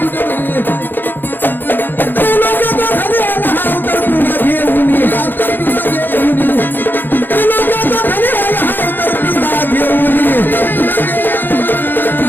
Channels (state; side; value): late; right; 0.093 ms